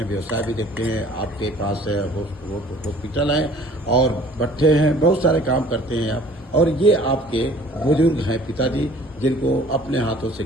व्यवसाय भी देखते हैं। आपके पास हॉस्पिटल है और भट्ठे हैं, बहुत सारे काम करते हैं आप। और ये आपके बुजुर्ग हैं पिताजी, जिनको अपने हाथों से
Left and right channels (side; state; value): both; normal; correlation 0.52